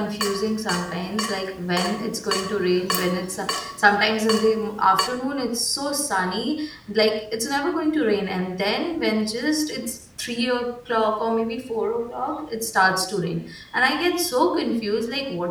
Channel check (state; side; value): identical; both; correlation 1.00